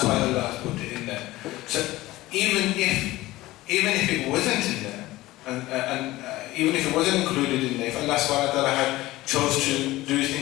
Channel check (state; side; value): quieter; right; 17.9 dB